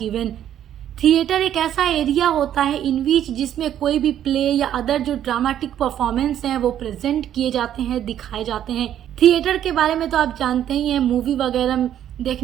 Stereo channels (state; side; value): quieter; left; 10.7 dB